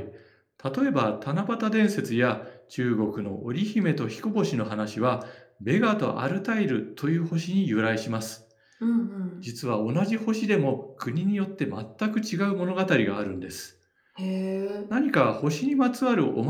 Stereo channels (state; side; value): identical; both; correlation 1.00